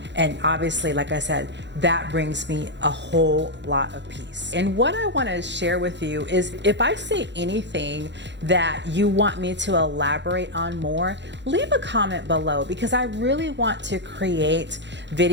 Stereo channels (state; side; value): late; left; 0.52 ms